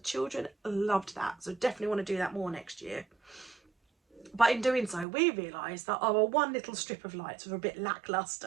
loved that, so definitely want to do that more next year. But in doing so, we realised that our one little strip of lights was a bit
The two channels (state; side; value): drops out; left; at 5.1 s